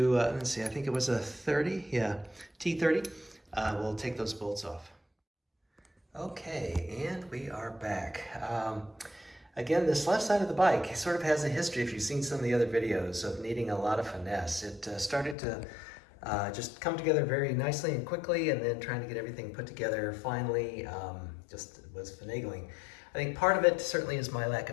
let's see, I think it was a 30, yeah, T30. We'll take those bolts off. Okay, and we are back. Again, this left side of the bike sort of has a history, if you've seen some of the other videos, of needing a lot of finesse. It started to just come together very nicely and quickly, and then trying to get everything put together finally just was finagling. I think part of it certainly is my lack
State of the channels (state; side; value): drops out; right; at 15.4 s